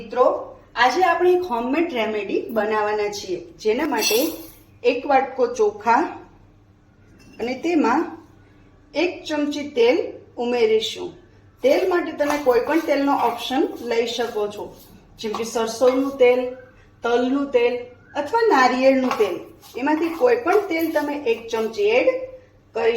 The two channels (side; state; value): both; identical; correlation 1.00